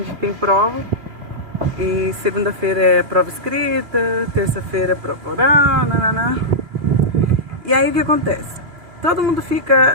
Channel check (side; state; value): left; late; 2.6 ms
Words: tem prova. E segunda-feira é prova escrita, terça-feira é prova oral, nananã. E aí o que acontece? Todo mundo